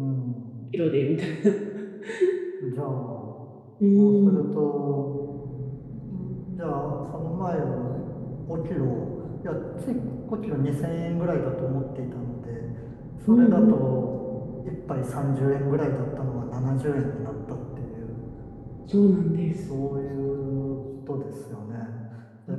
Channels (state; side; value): identical; both; correlation 1.00